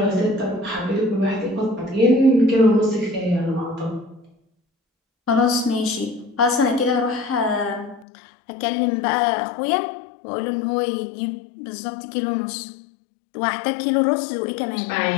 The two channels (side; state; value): right; drops out; at 8.1 s